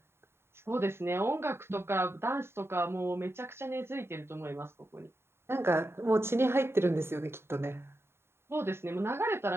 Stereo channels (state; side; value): late; left; 0.12 ms